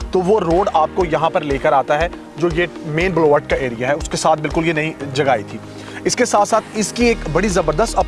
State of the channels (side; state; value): both; identical; correlation 1.00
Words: तो वो रोड आपको यहाँ पर लेकर आता है, जो ये मेन बुलवार्ड का एरिया है, उसके साथ बिल्कुल ये नई जगह आई थी। इसके साथ साथ इसकी एक बड़ी ज़बरदस्त